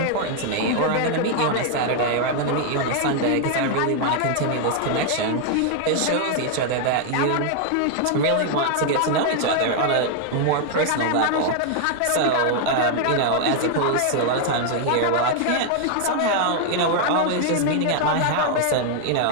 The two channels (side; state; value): both; different; correlation 0.00